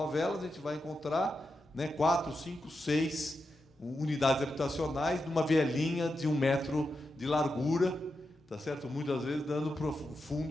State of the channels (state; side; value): normal; both; correlation 0.87